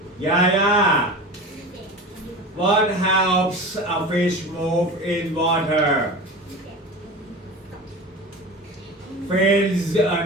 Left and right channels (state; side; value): normal; both; correlation 0.32